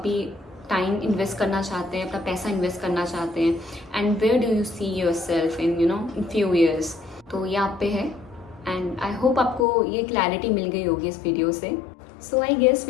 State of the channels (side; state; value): right; drops out; at 9.7 s